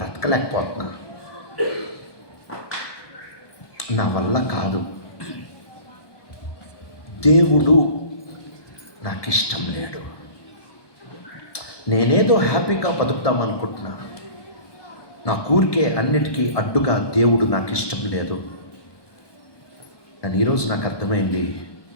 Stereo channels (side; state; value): right; late; 1.2 ms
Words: నా వల్ల కాదు, దేవుడు నాకు ఇష్టం లేడు, నేనేదో హ్యాపీగా బతుకుతామనుకుంటున్నా, నా ఊరికే అన్నిటికీ అడ్డుగా దేవుడు నాకు ఇష్టం లేదు. కానీ ఈరోజు నాకు అర్థమైంది,